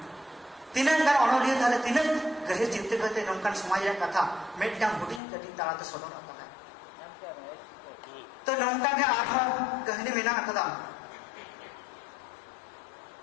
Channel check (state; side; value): drops out; right; at 5.2 s